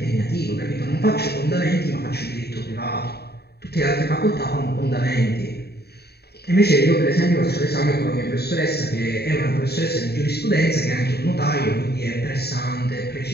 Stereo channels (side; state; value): right; late; 0.47 ms